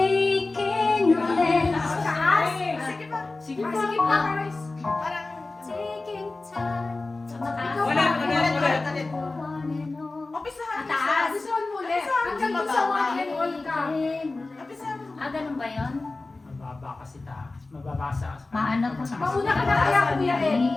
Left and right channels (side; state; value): right; quieter; 3.3 dB